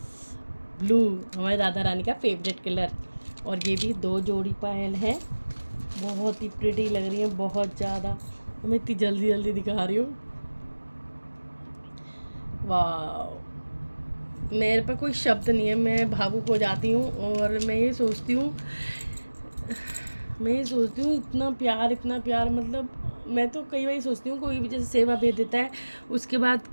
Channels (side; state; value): both; inverted; correlation -1.00